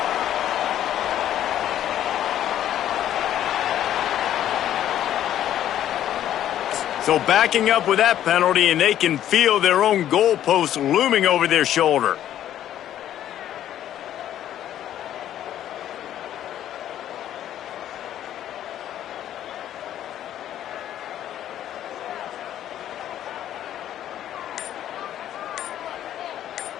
So backing up with that penalty, and they can feel their own goalpost looming over their shoulder.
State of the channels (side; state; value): right; quieter; 11.5 dB